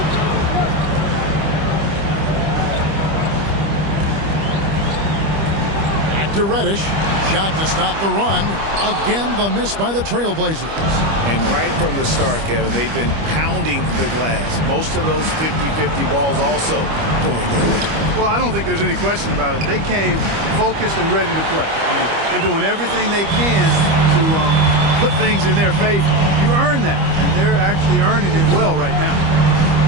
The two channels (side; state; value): left; late; 25 ms